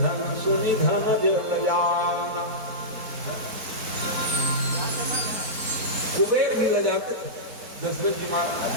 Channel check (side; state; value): left; late; 4.1 ms